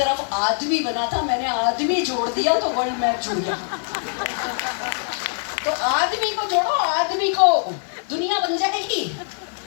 आदमी बना था, मैंने आदमी जोड़ दिया तो वर्ल्ड मैप जुड़ गया। तो आदमी को जोड़ो, आदमी को, दुनिया बन जाएगी।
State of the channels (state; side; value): silent; right; digital silence